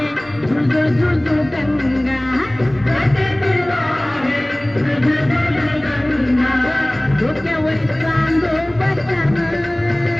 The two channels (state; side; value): noise; right; hum, 24 dB below the sound